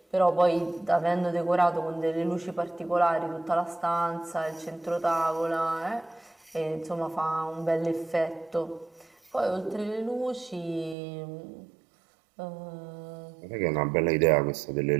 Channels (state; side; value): drops out; left; at 11.0 s